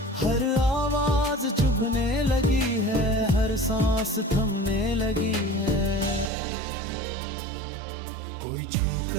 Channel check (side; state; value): left; drops out; at 6.3 s